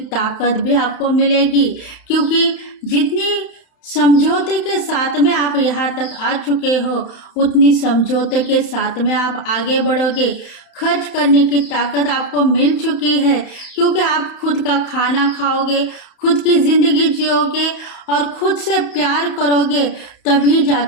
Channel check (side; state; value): right; late; 31 ms